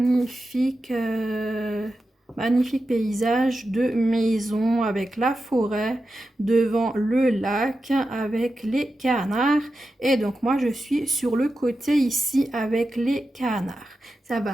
paysage de maison avec la forêt devant le lac avec les canards. Et donc moi je suis sur le côté ici avec les canards. Ça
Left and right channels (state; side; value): normal; both; correlation 0.91